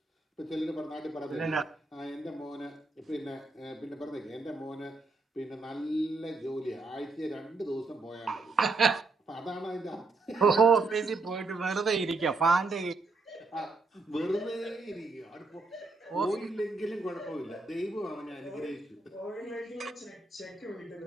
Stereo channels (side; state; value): left; quieter; 3.5 dB